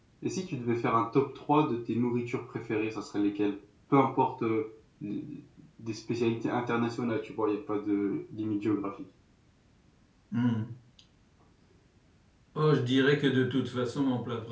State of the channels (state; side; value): identical; both; correlation 1.00